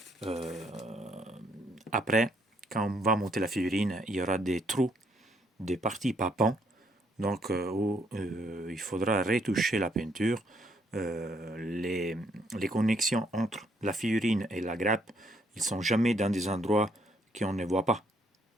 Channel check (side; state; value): both; normal; correlation 0.70